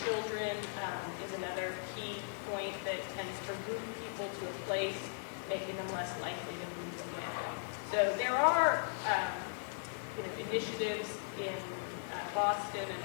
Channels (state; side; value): silent; right; 52 dB below the other